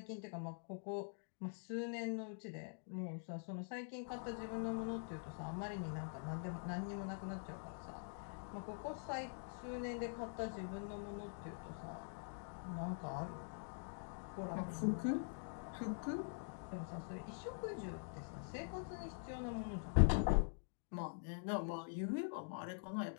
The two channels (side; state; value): right; silent; digital silence